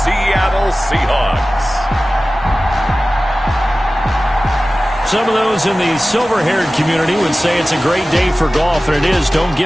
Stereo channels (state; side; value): normal; both; correlation 0.96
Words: Seahawks. Some of those in the silver-haired community would say it's a great day for golf, and it is, don't